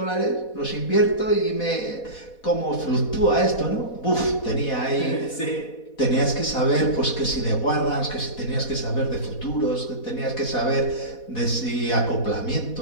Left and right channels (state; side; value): late; right; 4.1 ms